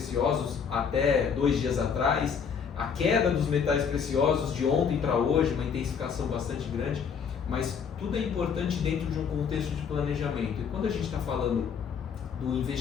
até 2 dias atrás, a queda dos metais preciosos de ontem para hoje, uma intensificação bastante grande, mas tudo é importante dentro de um contexto de planejamento. E quando a gente está falando do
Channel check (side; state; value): right; quieter; 6.7 dB